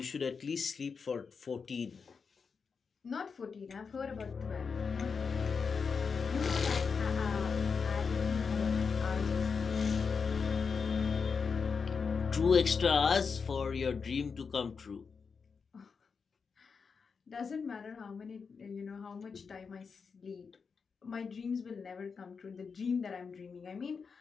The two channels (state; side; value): quieter; right; 5.5 dB